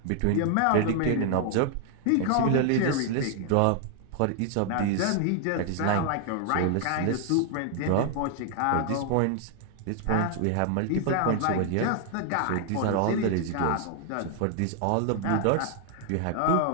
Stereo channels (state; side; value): different; both; correlation 0.00